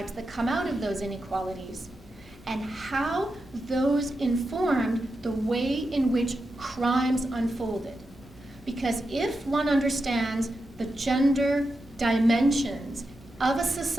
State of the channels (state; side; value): normal; both; correlation 0.88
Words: that come out of those inequalities, and how those informed the way in which crimes unfolded. Because if one understands the gender dimensions of a